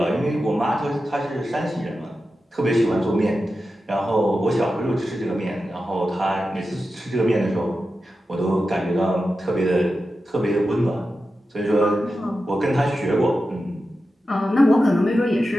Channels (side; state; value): both; normal; correlation 0.91